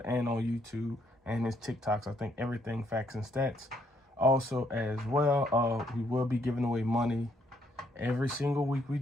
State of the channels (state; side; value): normal; both; correlation 0.71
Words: and on YouTube and his TikToks. I think everything Facts and Stats. Also, as well, we will be giving away money every single week we